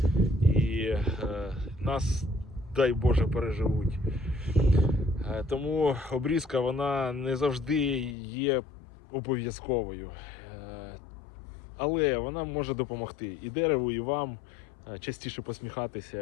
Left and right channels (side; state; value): right; drops out; at 8.2 s